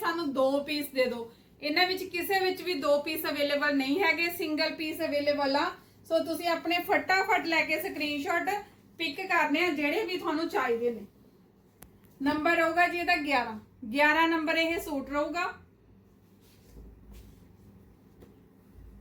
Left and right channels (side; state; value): both; identical; correlation 1.00